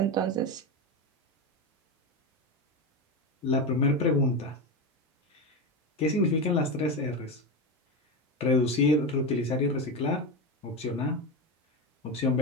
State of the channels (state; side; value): normal; both; correlation 0.17